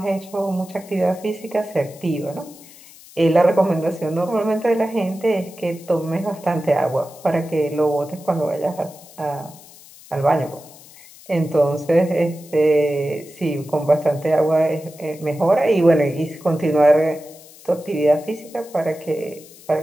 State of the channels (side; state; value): left; noise; hiss, 21 dB below the sound